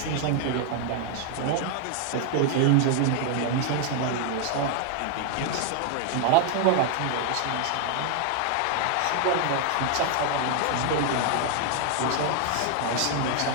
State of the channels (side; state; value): both; different; correlation 0.00